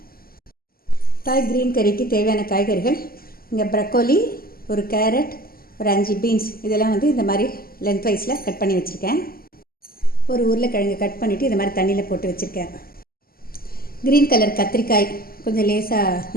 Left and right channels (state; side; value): late; right; 0.43 ms